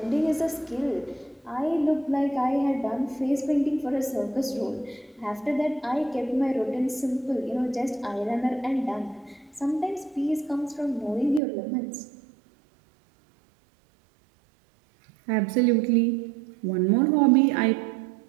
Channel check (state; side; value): drops out; left; at 11.4 s